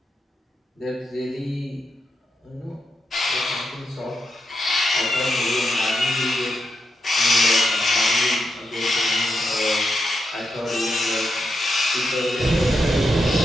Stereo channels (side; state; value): both; normal; correlation 0.84